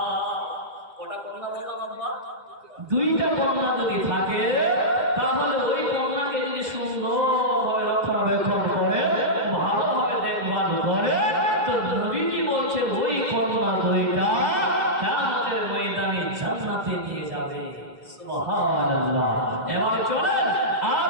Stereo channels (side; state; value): left; late; 1.6 ms